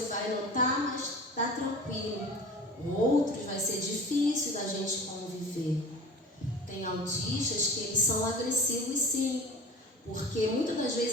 vai notar, mas está tranquilo. Outros vai ser difícil da gente conviver. Tem autistas que eles são agressivos, sim, porque muitas das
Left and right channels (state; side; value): normal; both; correlation 0.37